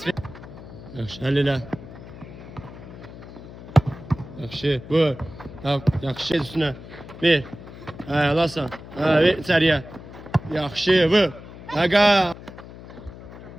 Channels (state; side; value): noise; left; hum, 15 dB below the sound